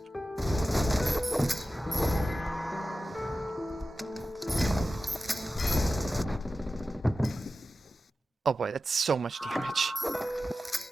Oh boy, that's so much damage.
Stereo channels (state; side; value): normal; both; correlation 0.94